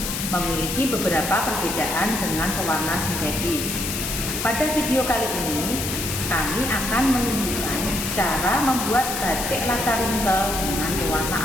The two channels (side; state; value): left; noise; hiss, 4 dB below the sound